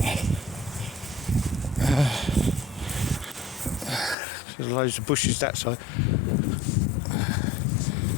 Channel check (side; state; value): right; drops out; at 4.2 s